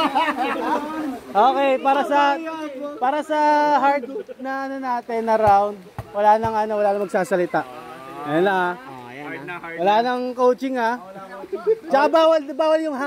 Okay, para sa hard na ano natin na round, wala nang magsasalita. Ayun lang ah. Wala nang coaching ah. Tsaka bawal yung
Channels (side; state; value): both; identical; correlation 1.00